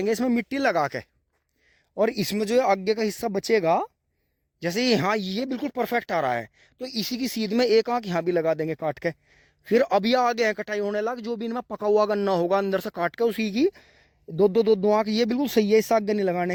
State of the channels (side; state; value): both; identical; correlation 1.00